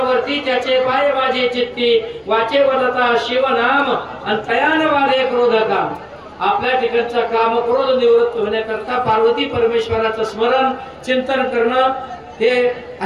त्याचे पाय माझे चित्ती वाचे वदता शिव नाम आणि तयान वादे क्रोधका. आपल्या ठिकाणचा काम क्रोध निवृत्त होण्याकरता पार्वती परमेश्वराचं स्मरण चिंतन करणं हे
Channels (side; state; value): both; identical; correlation 1.00